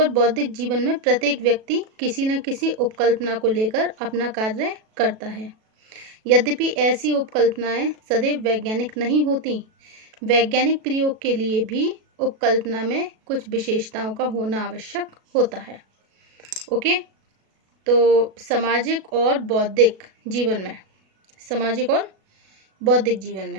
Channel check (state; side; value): late; left; 37 ms